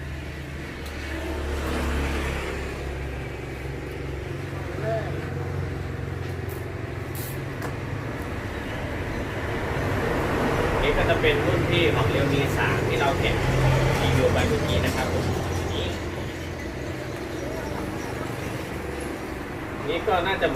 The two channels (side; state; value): both; identical; correlation 1.00